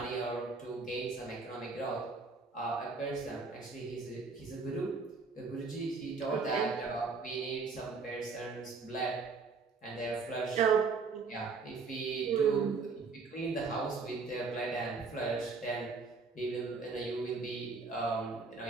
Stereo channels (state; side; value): quieter; left; 4.5 dB